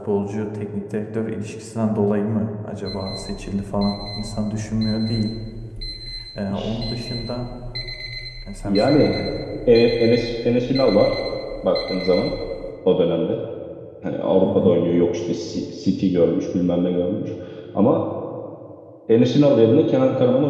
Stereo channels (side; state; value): both; identical; correlation 1.00